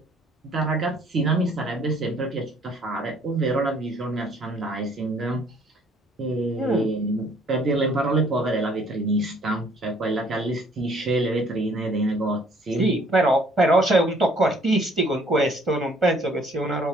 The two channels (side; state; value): both; normal; correlation 0.60